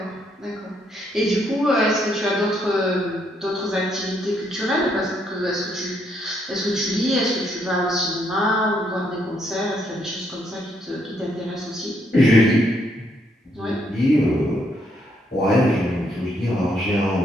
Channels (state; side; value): normal; both; correlation 0.73